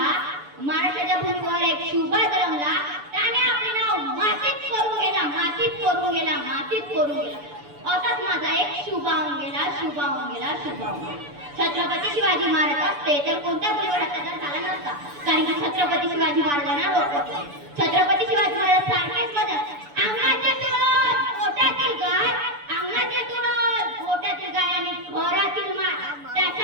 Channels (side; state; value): left; late; 6.9 ms